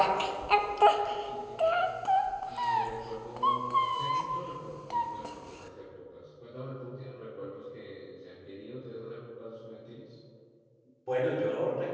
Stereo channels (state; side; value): identical; both; correlation 1.00